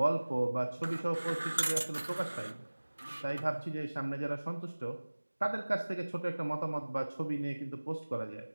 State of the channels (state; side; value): inverted; both; correlation -1.00